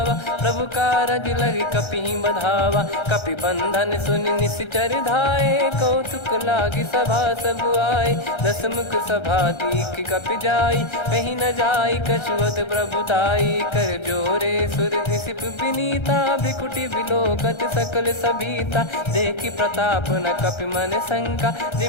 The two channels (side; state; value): right; late; 1.3 ms